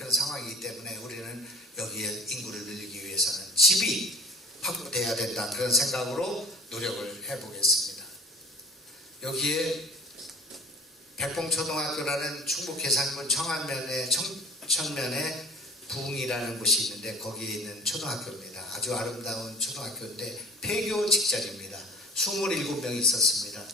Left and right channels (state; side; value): normal; both; correlation 0.40